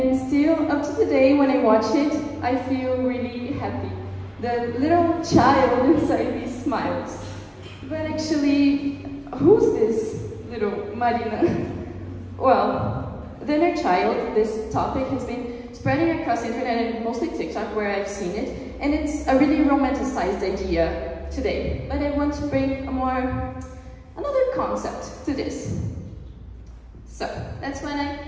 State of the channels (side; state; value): both; identical; correlation 1.00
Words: still, up to today, when I watch it, I feel really happy. The little child inside me smiles. But actually, who's this little Marina? Well, the inner child, this topic has been spreading across the internet and mostly TikTok where I've seen it. And it's a really romanticized idea today. But I want to bring another concept to this. So, that's when